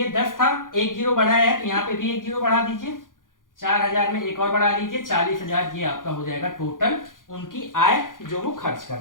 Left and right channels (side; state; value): right; late; 0.89 ms